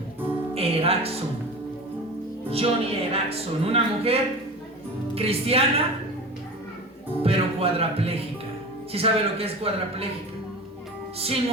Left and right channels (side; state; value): both; normal; correlation 0.32